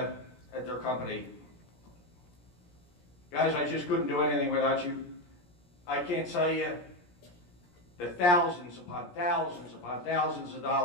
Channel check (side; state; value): right; late; 17 ms